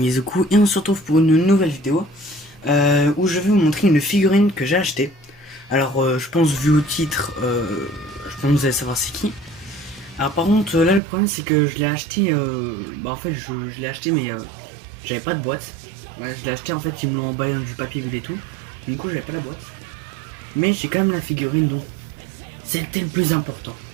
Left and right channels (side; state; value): left; drops out; at 11.0 s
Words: et on se retrouve pour une nouvelle vidéo où je vais vous montrer une figurine que j'ai achetée. Alors je pense vu au titre, je pense que vous allez savoir c'est qui. Alors par contre là le problème c'est que je l'ai acheté, en fait je l'ai acheté mais j'avais pas de boîte. Ouais, je l'ai acheté en fait ils me l'ont emballé dans du papier bulle et tout. Du coup j'avais pas la boîte. Mais j'ai quand même la figurine donc c'était le plus important.